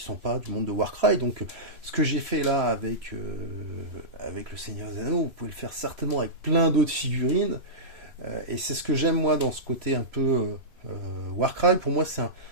sont pas du monde de Warcry. Donc, ce que j'ai fait là avec le Seigneur des Anneaux, vous pouvez le faire certainement avec plein d'autres figurines. Et c'est ce que j'aime moi dans ce côté un peu Warcry. Pour moi,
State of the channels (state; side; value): late; left; 3.0 ms